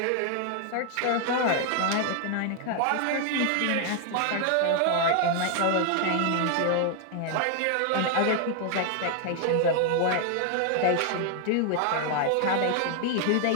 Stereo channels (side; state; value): both; different; correlation 0.01